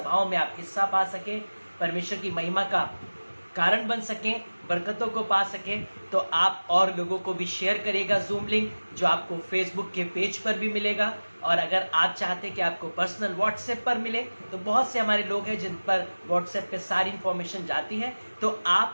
में आप हिस्सा पा सकें, परमेश्वर की महिमा का कारण बन सकें, बरकतों को पा सकें, तो आप और लोगों को भी शेयर करिएगा जूम लिंक, जो आपको फेसबुक के पेज पर भी मिलेगा। और अगर आप चाहते हैं कि आपको पर्सनल व्हाट्सएप पर मिले, तो बहुत से हमारे लोग हैं जिन पर व्हाट्सएप पे सारी इंफॉर्मेशन जाती है, तो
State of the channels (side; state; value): both; inverted; correlation -1.00